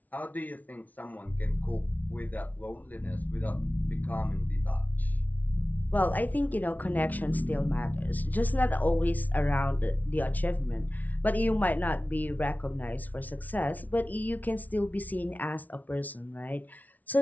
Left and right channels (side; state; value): right; late; 0.076 ms